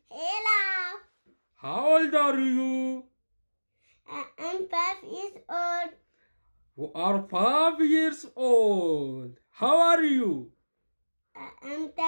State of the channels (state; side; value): inverted; both; correlation -1.00